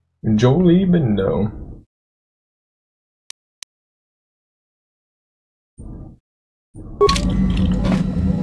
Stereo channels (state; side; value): identical; both; correlation 1.00